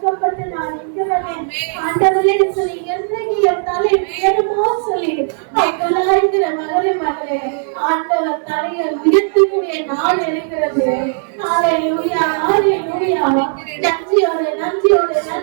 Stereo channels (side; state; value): left; silent; digital silence